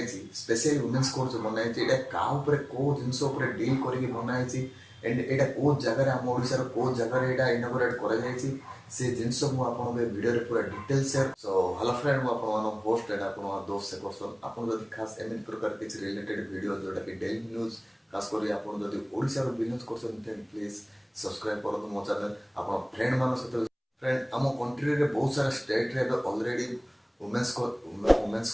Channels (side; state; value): both; identical; correlation 1.00